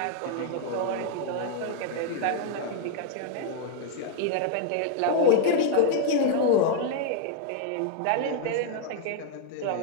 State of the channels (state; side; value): different; both; correlation 0.00